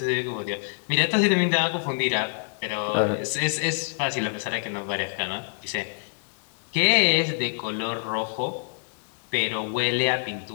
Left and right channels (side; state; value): right; silent; 61 dB below the other